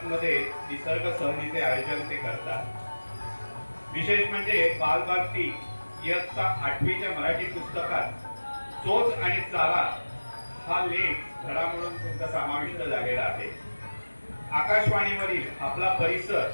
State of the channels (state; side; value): inverted; both; correlation -1.00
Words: निसर्ग सहलीचे आयोजन ते करतात. विशेष म्हणजे बालभारती इयत्ता 8वीच्या मराठी पुस्तकात चोच आणि चाला हा लेख धडा म्हणून तुमचा समाविष्ट झालेला आहे. आकाशवाणीवरील आपला परिसर